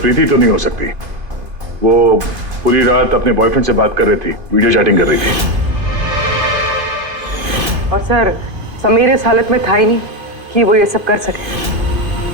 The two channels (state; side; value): late; left; 2.5 ms